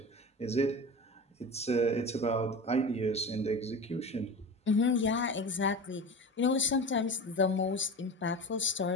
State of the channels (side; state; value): both; normal; correlation 0.30